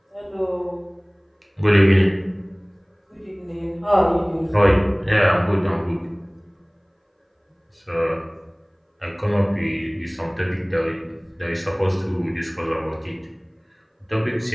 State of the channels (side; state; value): both; identical; correlation 1.00